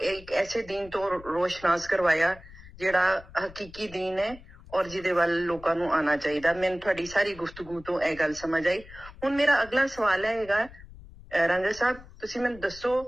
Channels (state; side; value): noise; left; rumble, 19 dB below the sound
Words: ਇੱਕ ਐਸੇ ਦੀਨ ਤੋਂ ਰੋਸ਼ਨਾਸ ਕਰਵਾਇਆ ਜਿਹੜਾ ਹਕੀਕੀ ਦੀਨ ਹੈ ਔਰ ਜਿਹਦੇ ਵੱਲ ਲੋਕਾਂ ਨੂੰ ਆਉਣਾ ਚਾਹੀਦਾ। ਮੈਨੂੰ ਤੁਹਾਡੀ ਸਾਰੀ ਗੁਫ਼ਤਗੂ ਤੋਂ ਇਹ ਗੱਲ ਸਮਝ ਆਈ। ਹੁਣ ਮੇਰਾ ਅਗਲਾ ਸਵਾਲ ਹੈਗਾ, ਰਾਂਝਾ ਸਾਹਿਬ ਤੁਸੀਂ ਮੈਨੂੰ ਦੱਸੋ